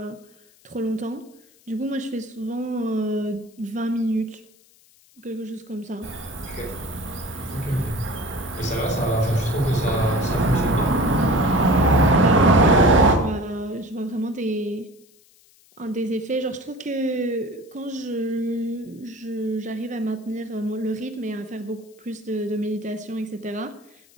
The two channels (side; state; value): left; noise; hiss, 29 dB below the sound